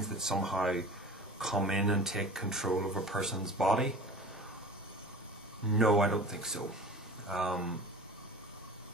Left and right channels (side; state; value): both; normal; correlation 0.38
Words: that somehow come in and take control of a person's body? No, I don't think so.